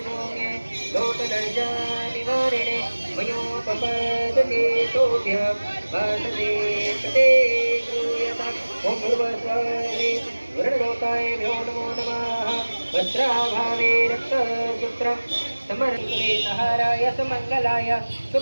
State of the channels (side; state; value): both; inverted; correlation -1.00